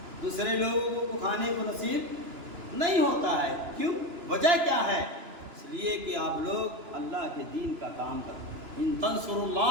دوسرے لوگوں کو کھانے کو نصیب نہیں ہوتا ہے. کیوں؟ وجہ کیا ہے؟ اس لیے کہ آپ لوگ اللہ کے دین کا کام کریں. ان تنصروا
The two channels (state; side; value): late; left; 2.9 ms